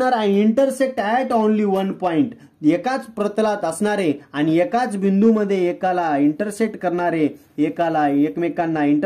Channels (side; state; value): both; identical; correlation 1.00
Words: and intersect at only one point. एकाच प्रतलात असणारे आणि एकाच बिंदूमध्ये एकाला इंटरसेक्ट करणारे, एकाला एकमेकांना